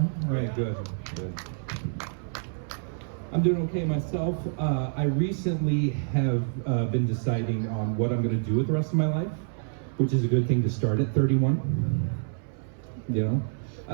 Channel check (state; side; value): silent; left; 59 dB below the other